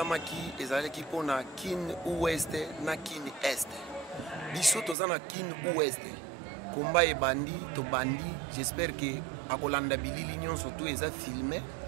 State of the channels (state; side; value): drops out; left; at 5.0 s